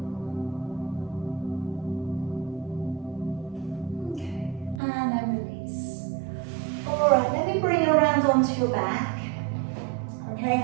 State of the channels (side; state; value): left; drops out; at 4.8 s